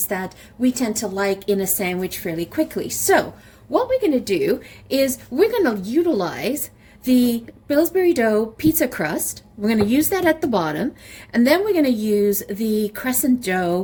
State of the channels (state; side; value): identical; both; correlation 1.00